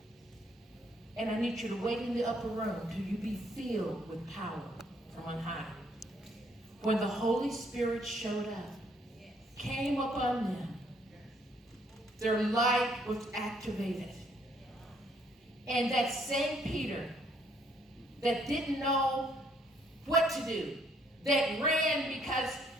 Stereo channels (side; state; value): both; normal; correlation 0.67